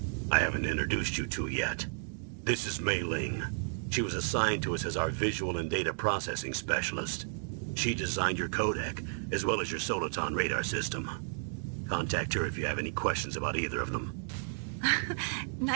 I haven't introduced you to yet. This is Mei Ling. She was assigned to us as our visual and data processing specialist. She designed your codec, as well as your Soliton radar system. Contact her if you have any questions about either of them.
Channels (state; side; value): silent; left; digital silence